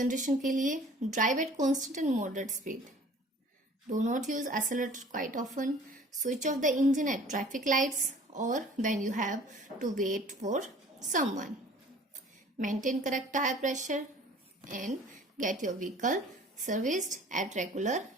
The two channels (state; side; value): normal; both; correlation 0.49